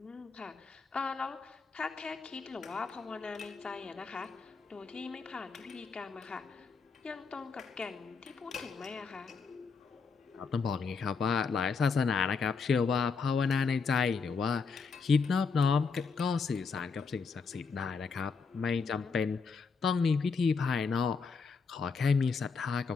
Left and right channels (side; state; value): right; quieter; 5.1 dB